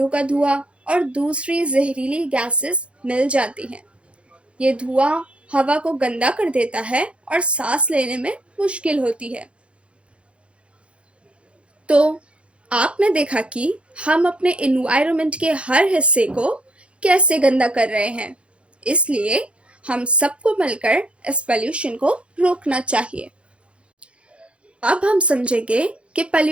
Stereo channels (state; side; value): late; left; 0.060 ms